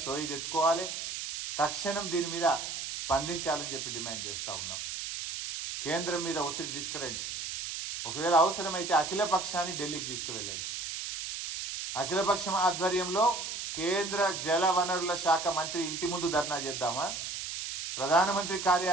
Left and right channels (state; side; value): noise; right; hiss, 5 dB below the sound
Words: సోయి తెచ్చుకోవాలి, తక్షణం దీని మీద స్పందించాలని చెప్పి డిమాండ్ చేస్తూ ఉన్నాం. కేంద్రం మీద ఒత్తిడి తీసుకురండి. ఒకవేళ అవసరమైతే అఖిలపక్షాన్ని ఢిల్లీకి తీసుకువెళ్ళండి. అఖిలపక్షం ఆధ్వర్యంలో కేంద్ర జల వనరుల శాఖ మంత్రి ఇంటి ముందు ధర్నా చేద్దామా, ప్రధానమంత్రి